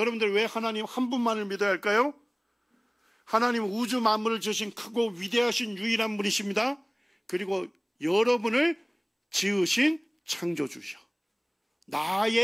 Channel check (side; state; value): both; identical; correlation 1.00